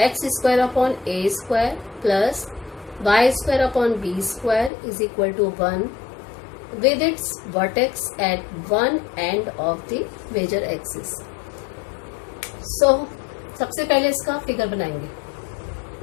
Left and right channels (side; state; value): right; drops out; at 4.7 s